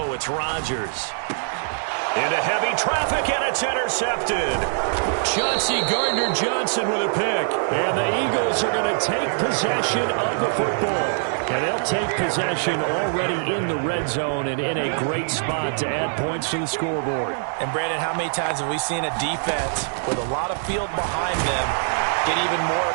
it's Rodgers. Into heavy traffic, and it's intercepted. Chauncey Gardner-Johnson with a pick. And the Eagles are going to take possession of the football. And they'll take possession already in the red zone and in a great spot to add points to the scoreboard. And, Brandon, how many times have we seen a defense with a lot of field behind them get even more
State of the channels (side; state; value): left; silent; digital silence